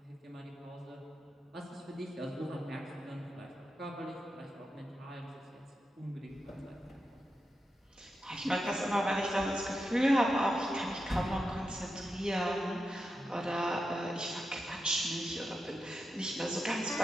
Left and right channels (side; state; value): both; normal; correlation 0.88